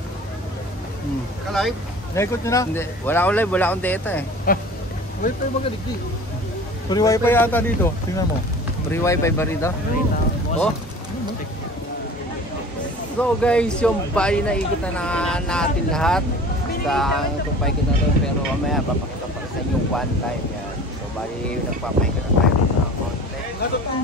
Ka-live? Naikot nyo na? Hindi. Wala akong live. Wala akong data eh. Wait tayo magaligdi. Free wifi yata dito. Tingnan mo. Free wifi ba rito? Oh. So guys, yung bali na ikot na natin lahat sa tumpay kita to, pero mamaya papakita pa sa inyo one time yan. So bali nagpapaikot na tayo ng konti.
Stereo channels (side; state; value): both; normal; correlation 0.42